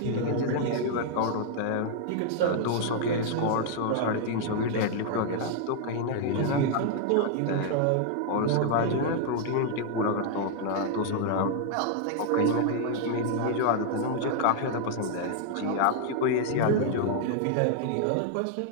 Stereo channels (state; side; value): different; both; correlation 0.00